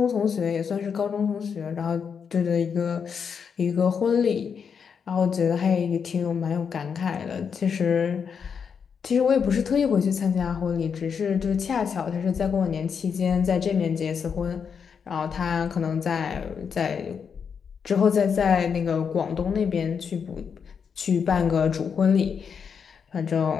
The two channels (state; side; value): quieter; right; 6.6 dB